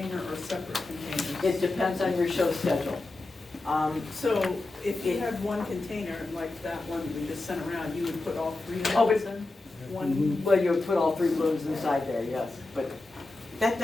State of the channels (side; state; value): right; quieter; 3.1 dB